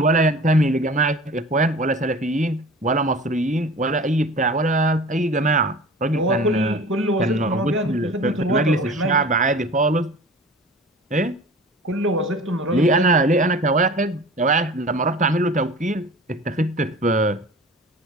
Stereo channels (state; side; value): normal; both; correlation 0.39